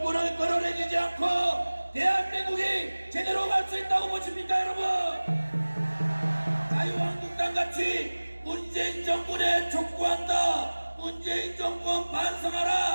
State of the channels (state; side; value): inverted; both; correlation -1.00